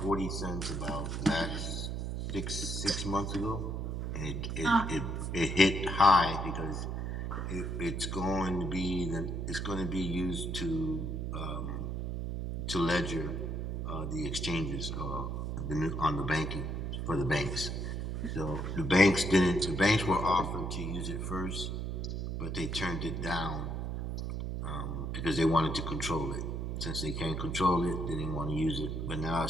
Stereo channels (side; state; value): right; noise; hum, 3 dB below the sound